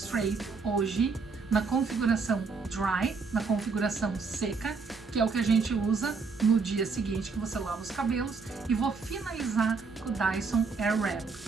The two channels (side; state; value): left; quieter; 4.7 dB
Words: hoje na configuração Dry, na configuração seca, que é o que a gente usa no dia seguinte que você lava os cabelos, e vou finalizar com o Dyson Airwrap.